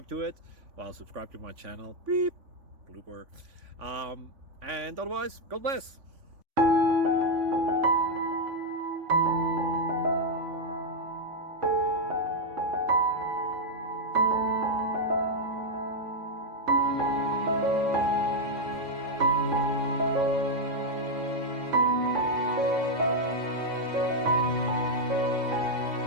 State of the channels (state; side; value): late; left; 3.5 ms